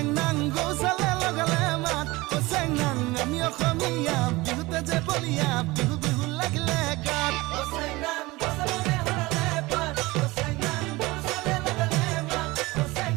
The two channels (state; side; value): quieter; left; 21.4 dB